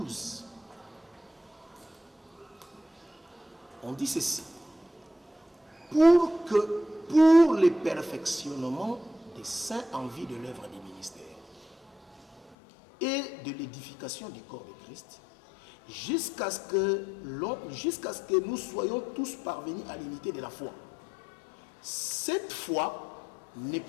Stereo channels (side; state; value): right; drops out; at 12.6 s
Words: On dit ceci. Pour le perfectionnement des saints en vue de l'œuvre du ministère et de l'édification du corps de Christ, jusqu'à ce que nous soyons tous parvenus à l'unité de la foi. Cette foi n'est